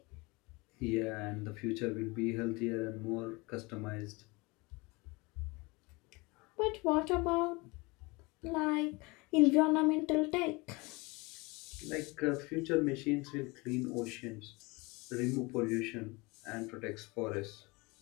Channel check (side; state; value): right; quieter; 25.5 dB